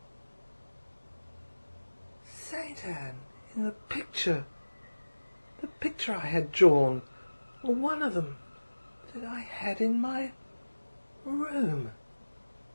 Saint Anne, in the picture I had drawn, or one of them that I had in my room.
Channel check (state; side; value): inverted; both; correlation -1.00